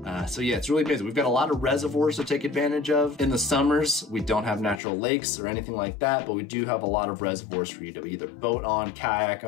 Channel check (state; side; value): drops out; right; at 4.8 s